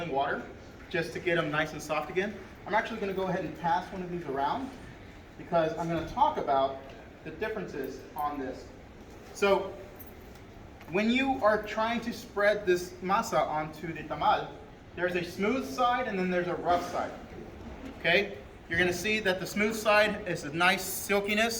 water just to get them nice and soft again. I'm actually going to go ahead and pass one of these around because I'm going to talk about the differences on this. So when you are trying to spread this masa onto the tamal, there's a smooth side and then there's a rough side. Okay, you're going to see that the smooth side is a nice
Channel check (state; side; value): identical; both; correlation 1.00